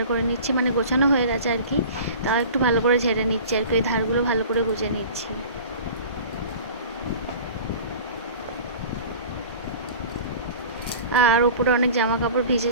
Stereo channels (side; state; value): both; inverted; correlation -0.40